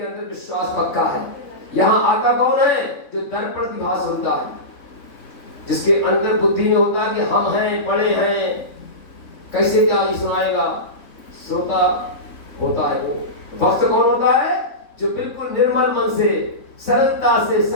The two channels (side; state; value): right; late; 3.6 ms